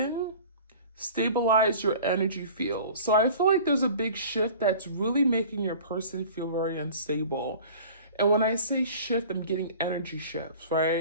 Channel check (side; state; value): both; inverted; correlation -0.43